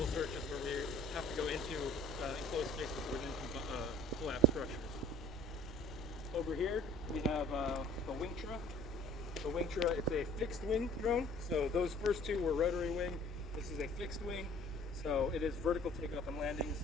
searches where we have to go into enclosed spaces within collapsed structures. Over here we have the Wingtra. The Wingtra, it's a fixed wing drone. So those first two were rotary wing. This is a fixed wing. So it is vertical takeoff and landing.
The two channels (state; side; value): noise; left; rumble, 14 dB below the sound